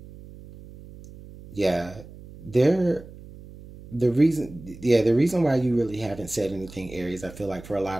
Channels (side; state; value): right; noise; hum, 18 dB below the sound